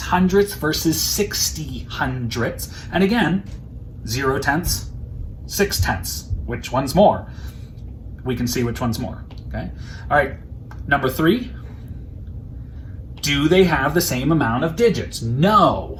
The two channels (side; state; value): both; identical; correlation 1.00